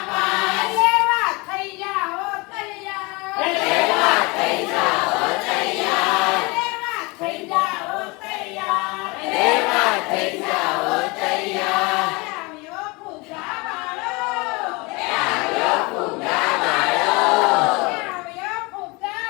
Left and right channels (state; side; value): quieter; right; 26.3 dB